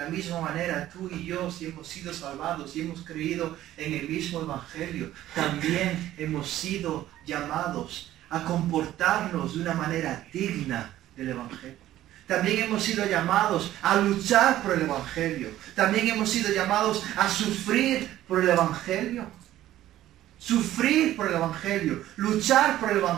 misma manera, tú y yo, si hemos sido salvados, si hemos creído en el mismo Evangelio, también hemos sido llamados a comportarnos de una manera digna del Evangelio. También hemos sido llamados a luchar por el Evangelio. También hemos sido llamados a sufrir por el Evangelio. Sufrir por el Evangelio, luchar por el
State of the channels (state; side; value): quieter; left; 13.7 dB